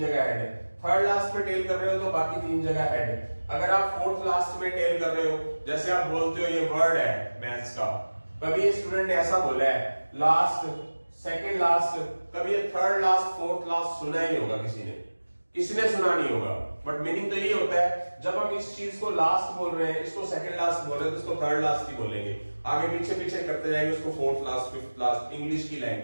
हेड, थर्ड लास्ट में टेल कर रहे हो तो बाकी 3 जगह हेड। अगर आप फोर्थ लास्ट में टेल कर रहे हो, जैसे आप बोलते हो ये वर्ड है मैथ्स का, कभी ये स्टूडेंट ने ऐसा बोला है लास्ट, सेकंड लास्ट, कभी ये थर्ड लास्ट, फोर्थ लास्ट सुना ही होगा किसी ने सुना नहीं होगा। बट मीनिंग तो यही होता है, जब हम इस चीज को लास्ट बोल रहे हैं, इसको सेकंड लास्ट बोल रहे हैं, तो इसको थर्ड लास्ट ही बोलेंगे, आगे पीछे पीछे करते जाएंगे उसको fourth last, fifth last, English की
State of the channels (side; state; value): both; inverted; correlation -1.00